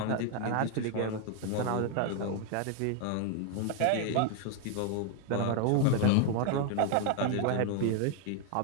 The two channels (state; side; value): different; both; correlation 0.01